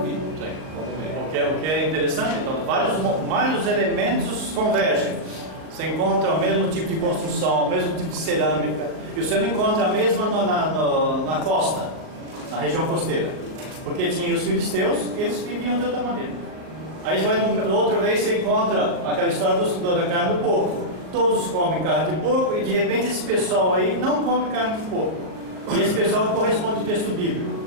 O que é interessante, então, vários elementos convergem. Você encontra o mesmo tipo de construção, o mesmo tipo de cerâmica, e você não encontra a mesma na costa, na região costeira, porque tinha os filisteus e eles viviam de outra maneira. Aí você vai outra vez, você encontra aquela história da carne do porco. Todos comem carne de porco e de repente esse pessoal aí não come carne de porco. E esse pessoal corresponde ao texto bíblico.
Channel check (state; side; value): late; left; 39 ms